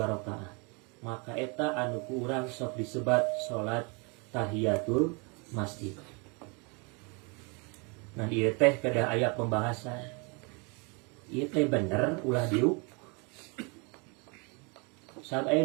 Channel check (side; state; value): left; quieter; 32.0 dB